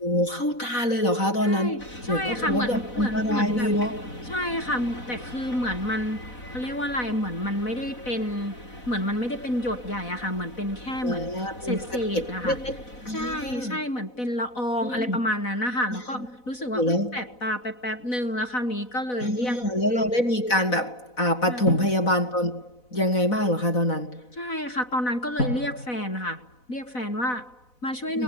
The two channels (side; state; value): right; late; 4.0 ms